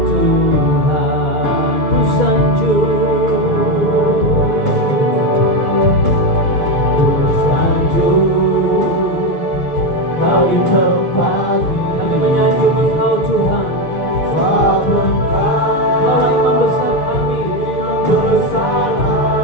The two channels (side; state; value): right; late; 6.5 ms